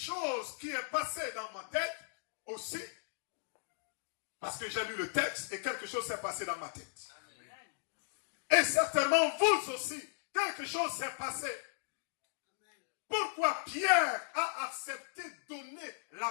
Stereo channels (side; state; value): right; silent; digital silence